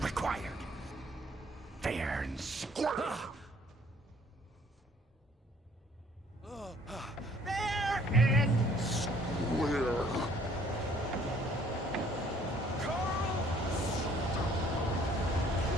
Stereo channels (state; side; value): normal; both; correlation 0.59